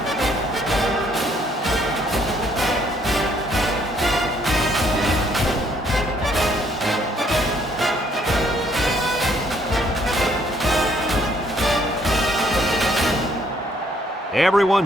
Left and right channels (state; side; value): normal; both; correlation 0.66